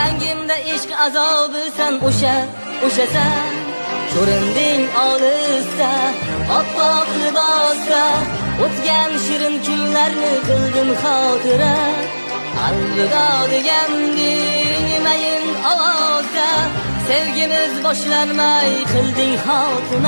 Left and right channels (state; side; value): inverted; both; correlation -1.00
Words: ishq azobi san o'shasan. Ko'rinding olisda, oppoq libosda, o'tgan shirin kunlarni qildim xotira. Alvido deganding mayin ovozda, sevgimiz boshlanmay qilding